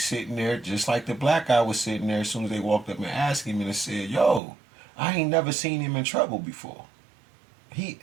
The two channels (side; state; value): left; drops out; at 4.4 s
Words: there just like the black guy was sitting there as soon as they walked up and asked him and said, yo, I ain't never seen him in trouble before.